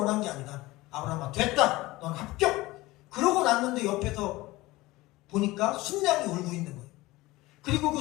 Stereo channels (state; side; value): quieter; right; 19.6 dB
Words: 게 아니다. 아브라함아 됐다. 넌 합격. 그러고 났는데 옆에서 보니까 순양이 울고 있는 거예요. 그리고